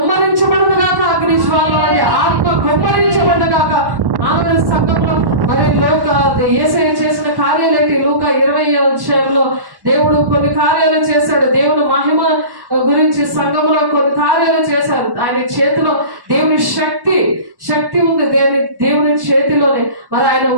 గాక, అగ్నిజ్వాల ఆత్మ కుమ్మరించబడదు గాక. ఆమె సంఘంలో మరి యేసయ్య చేసిన కార్యాలేంటి? లూకా 20వ అధ్యాయంలో దేవుడు కొన్ని కార్యాలు చేశాడు. దేవుని మహిమ గురించి సంఘంలో కొన్ని కార్యాలు చేశారు. ఆయన చేతిలో దేవుని శక్తి ఉంది. దేవుని చేతిలోనే మరి ఆయన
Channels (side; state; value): left; late; 1.1 ms